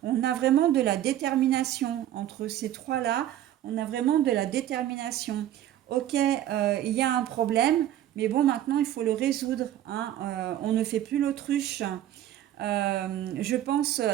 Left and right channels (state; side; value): quieter; left; 12.3 dB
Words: on a vraiment de la détermination. Entre ces trois-là, on a vraiment de la détermination. Ok, il y a un problème, mais bon, maintenant, il faut le résoudre. Hein. On ne fait plus l'autruche. Je pense,